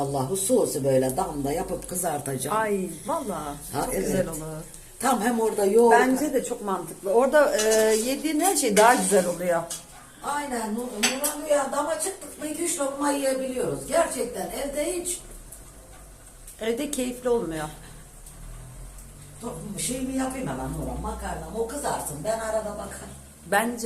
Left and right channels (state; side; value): identical; both; correlation 1.00